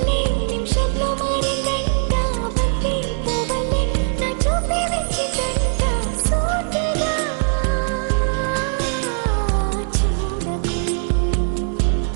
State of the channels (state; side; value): silent; left; digital silence